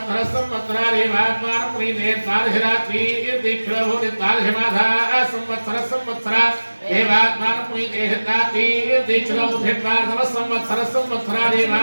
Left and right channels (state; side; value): inverted; both; correlation -1.00